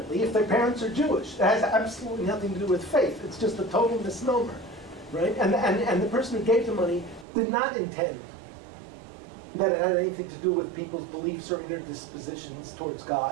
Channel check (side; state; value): left; drops out; at 7.2 s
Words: if their parents are Jewish. It has absolutely nothing to do with faith. It's just a total misnomer, right? And the person who gave the money did not intend that it had anything to do with people's beliefs or inner dispositions towards